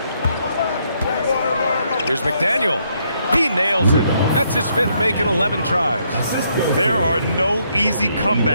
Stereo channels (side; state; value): both; inverted; correlation -0.73